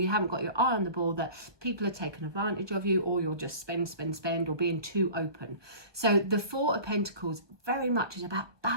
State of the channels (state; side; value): late; left; 1.2 ms